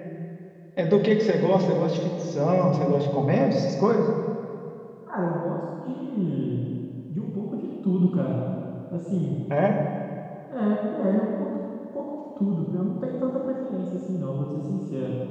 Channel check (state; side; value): identical; both; correlation 1.00